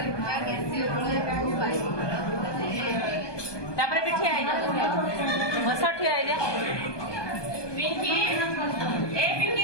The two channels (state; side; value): late; right; 1.2 ms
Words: तापर भी ठिया आइले मसा ठिया आइले पिंकी ए